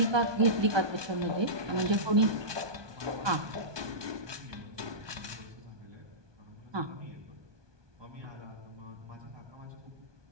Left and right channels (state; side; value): late; left; 1.2 ms